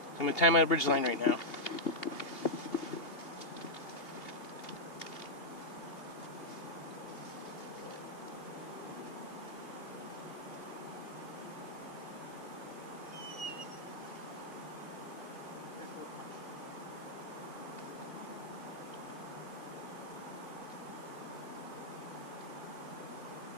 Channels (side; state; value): right; late; 2.8 ms